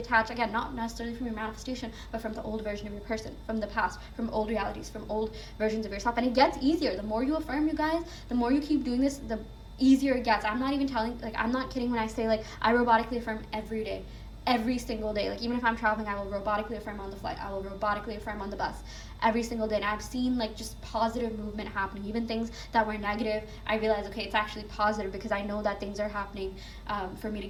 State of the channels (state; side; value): identical; both; correlation 1.00